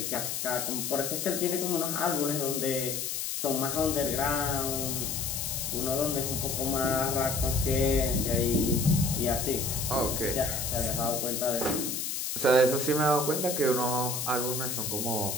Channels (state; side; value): noise; left; hiss, 2 dB below the sound